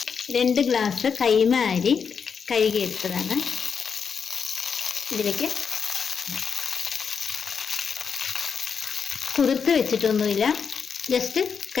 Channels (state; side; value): quieter; right; 6.3 dB